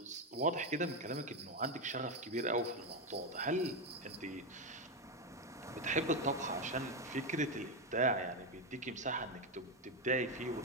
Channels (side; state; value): both; normal; correlation 0.08